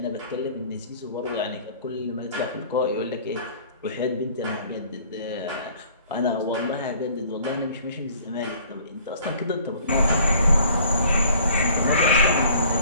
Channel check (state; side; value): inverted; both; correlation -0.55